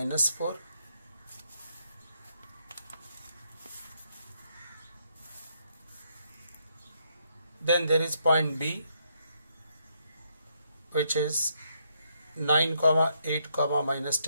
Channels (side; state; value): both; inverted; correlation -0.75